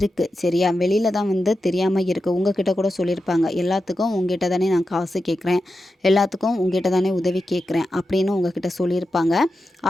சரியா? வெளியில் தான் வந்து தெரியாமல் இருக்குது. உங்ககிட்ட கூட சொல்லியிருப்பாங்க, எல்லாத்துக்கும் உங்ககிட்ட தானே நான் காசு கேட்குறேன், எல்லாத்துக்கும் உங்ககிட்ட தானே உதவி கேட்குறேன் அப்படின்னு உங்ககிட்ட சொல்லியிருப்பாங்க.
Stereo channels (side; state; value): both; normal; correlation 0.90